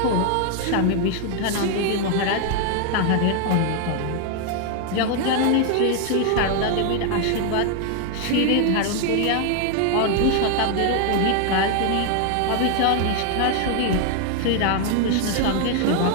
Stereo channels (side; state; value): both; different; correlation 0.00